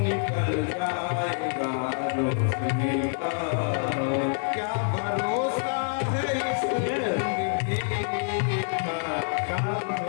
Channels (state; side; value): silent; right; digital silence